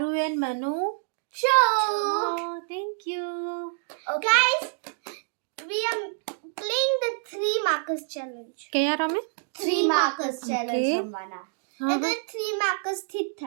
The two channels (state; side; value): silent; left; digital silence